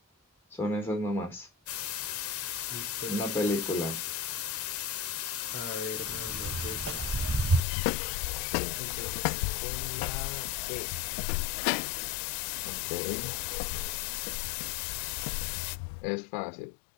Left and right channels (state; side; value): drops out; right; at 7.6 s